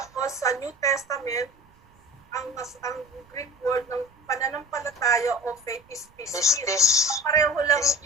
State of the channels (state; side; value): noise; right; rumble, 30 dB below the sound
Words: sa New Testament, ang Greek word ng pananampalataya o faith is pistis. Pareho lang ang